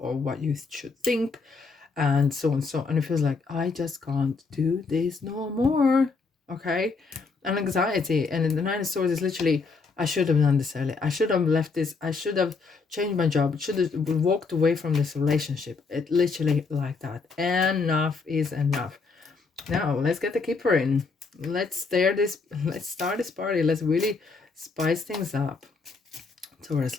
or what you should think, and so on and so on. And it feels like, I just can't do this no more, okay? And anxiety. And in the Nine of Swords is literally, I should have done this earlier. I should have left this. I should have changed my job. Should have walked away from this relationship. It literally like that. Enough is enough. Now, let's get the keeper in. Let's start this party. Let's really spice things up. Taurus,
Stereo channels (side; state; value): right; quieter; 4.4 dB